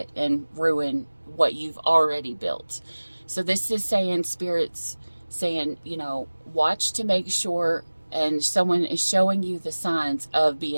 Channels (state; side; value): inverted; both; correlation -1.00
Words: and ruin what you've already built. So this is saying, Spirit's saying, watch to make sure, and someone is showing you the signs of